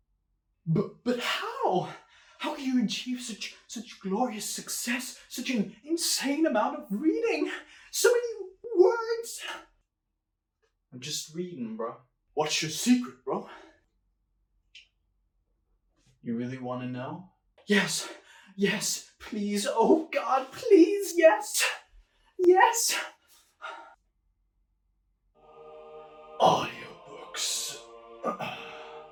But how? How can you achieve such glorious success? Such an insane amount of reading? So many words! I'm just reading, bro. What's your secret, bro? You really want to know? Yes, please. Oh God, please, yes. Audiobooks.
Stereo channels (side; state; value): both; identical; correlation 1.00